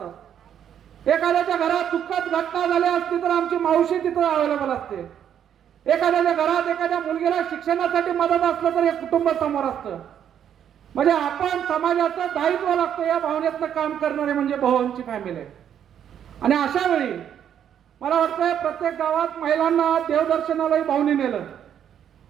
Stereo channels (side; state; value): left; quieter; 9.3 dB